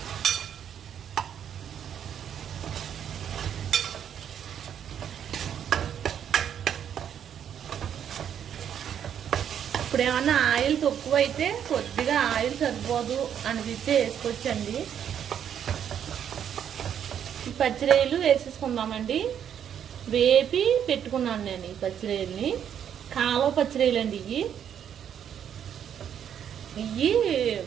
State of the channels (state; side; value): quieter; left; 9.0 dB